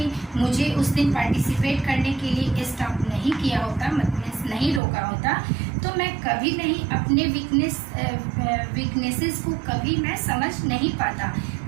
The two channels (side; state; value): left; drops out; at 4.8 s